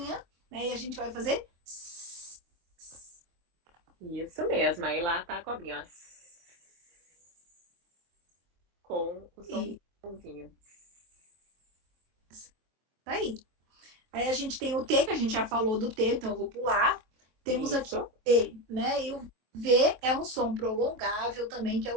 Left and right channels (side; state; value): left; late; 23 ms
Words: né? E a gente vai fazer... Isso mesmo. Aí lá tá a cobrinha, ó. Com o somzinho. Tá aí. Aí a gente tem o T, que a gente já falou do T, então eu vou pular. Temos aqui o T, né? E o V é um som prolongável também, que é